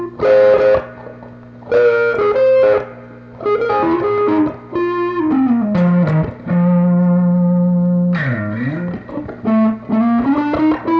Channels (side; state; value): both; identical; correlation 1.00